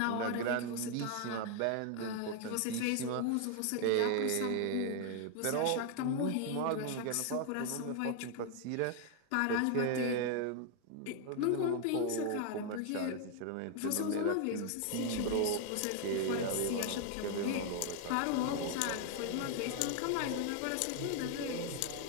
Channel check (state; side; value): different; both; correlation 0.00